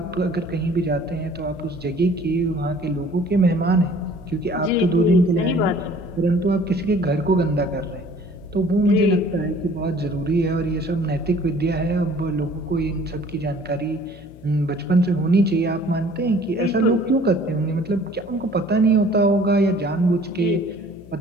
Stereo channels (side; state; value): left; noise; hum, 20 dB below the sound